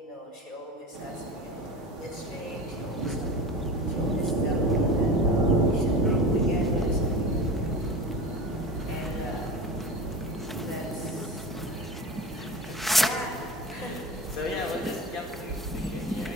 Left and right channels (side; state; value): both; normal; correlation 0.30